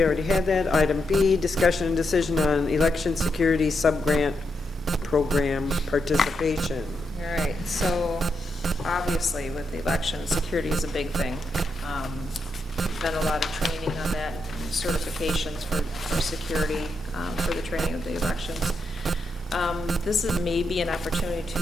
already had that. Item B, discussion and decision on election security sub-grant program participation. All right, so obviously with the election, security is a big thing. Done a lot of training on that, and certifications for security, for the training of the elections. This is maybe an opportunity to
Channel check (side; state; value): both; normal; correlation 0.83